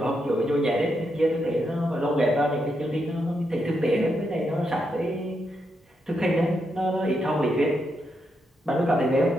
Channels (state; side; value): normal; both; correlation 0.82